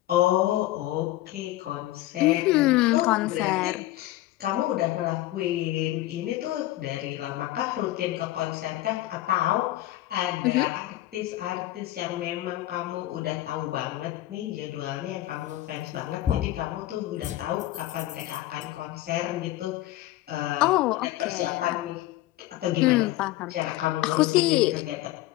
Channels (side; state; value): right; quieter; 15.8 dB